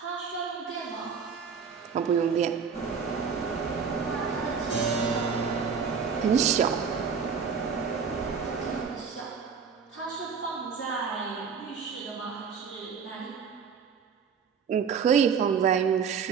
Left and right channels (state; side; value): quieter; left; 6.3 dB